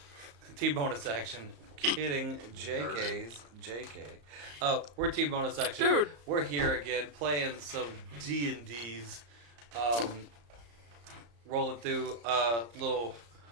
Team bonus action. Kidding. JK. Oh, we're team bonus action. Dude. We're here again playing some D&Ds. Rolling through a little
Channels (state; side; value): late; left; 34 ms